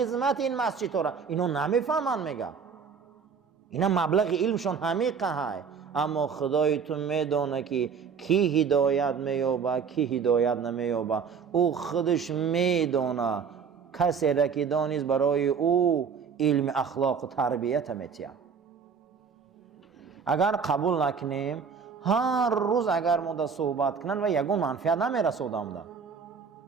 این مسجد را، اینا نمیفهمن میگه. اینا مبلغ علمشون همیقه های. اما خدای تو میدونه که کی هدایت مییابه کی هدایت نمییابه. او خودش میدونه. کسی را که دانست برای او علم اخلاق و تربیت میتیه. اگر قبول نکنیم هر روز اگر ما صحبت کنن و یگون منفعت نمیرسودم ده.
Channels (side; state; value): left; quieter; 6.2 dB